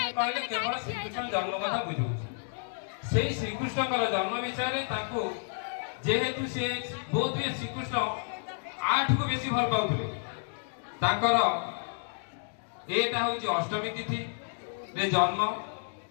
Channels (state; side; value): silent; right; digital silence